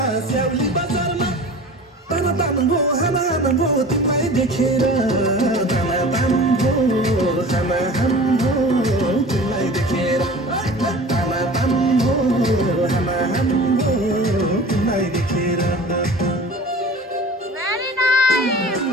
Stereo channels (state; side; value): normal; both; correlation 0.39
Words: ताना तान भो हाना हाना भो तिमीलाई देखेर ताना तान भो हाना हान भो तिमीलाई देखेर ताना तान भो हाना हान भो तिमीलाई देखेर